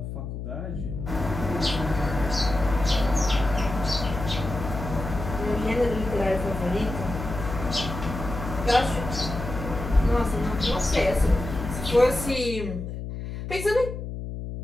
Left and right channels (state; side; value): noise; left; hum, 7 dB below the sound